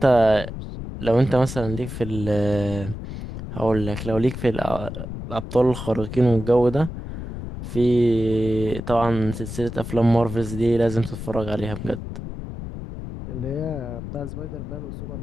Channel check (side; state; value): left; noise; rumble, 8 dB below the sound